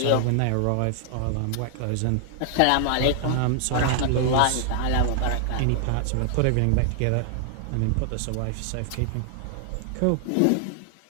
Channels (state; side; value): different; both; correlation 0.00